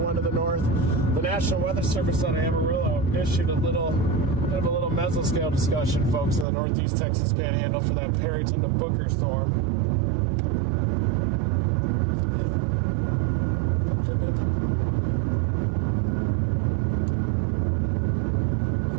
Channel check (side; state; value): left; drops out; at 6.5 s